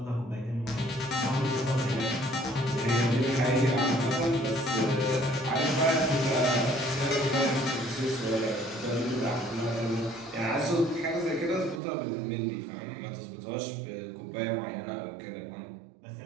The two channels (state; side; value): drops out; left; at 11.8 s